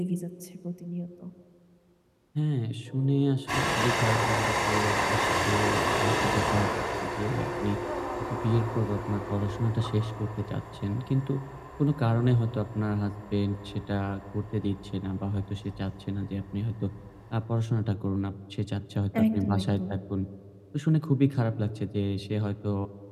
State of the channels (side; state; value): both; identical; correlation 1.00